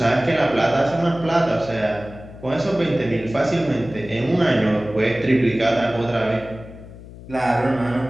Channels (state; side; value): noise; left; hum, 16 dB below the sound